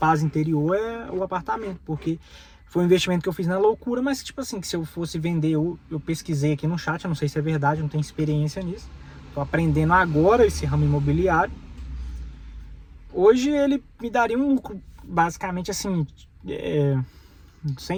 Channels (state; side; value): identical; both; correlation 1.00